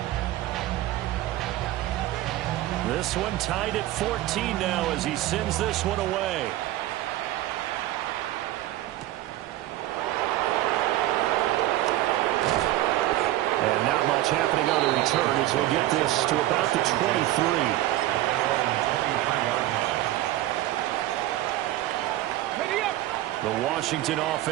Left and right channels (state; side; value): quieter; left; 15.2 dB